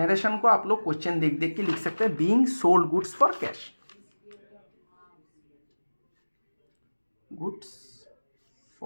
को आप लोग क्वेश्चन देख देख के लिख सकते हैं, being sold goods for cash, goods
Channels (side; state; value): both; inverted; correlation -1.00